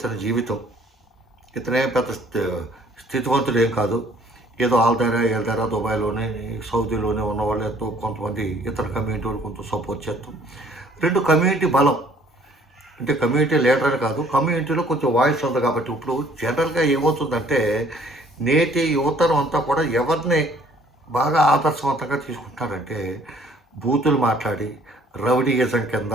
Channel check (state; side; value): normal; both; correlation 0.59